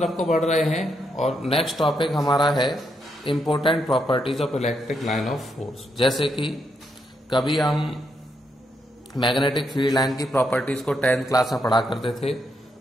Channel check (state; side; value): normal; both; correlation 0.79